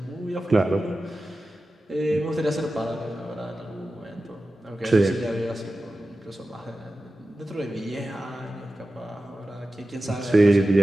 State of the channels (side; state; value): both; normal; correlation 0.94